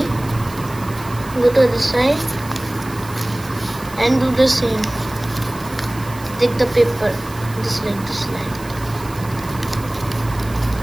Go to the side and do the same. Take the paper just like this line.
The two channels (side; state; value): right; noise; hiss, 18 dB below the sound